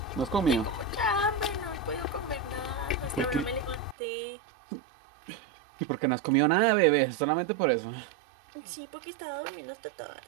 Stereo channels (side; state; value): left; drops out; at 4.0 s